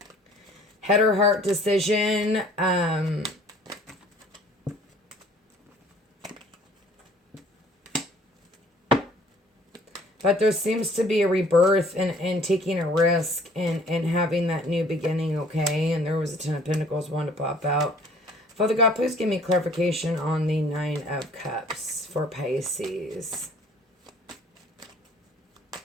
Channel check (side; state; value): both; normal; correlation 0.55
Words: Head or heart decision. But there seems to be a rebirth and taking a risk and having that new beginning, okay? And there was a 10 of Pentacles, one to pop out. Father God, please give me clarification on the 9 of Cups for Pisces.